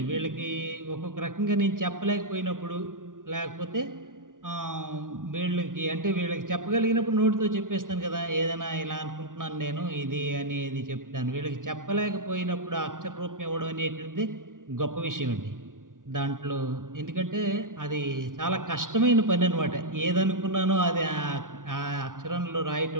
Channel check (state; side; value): late; left; 0.88 ms